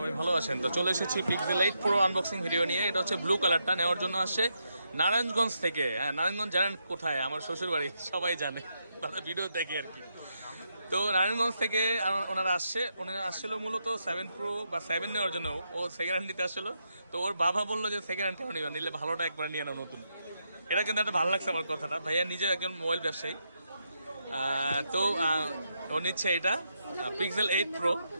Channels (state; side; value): inverted; both; correlation -0.81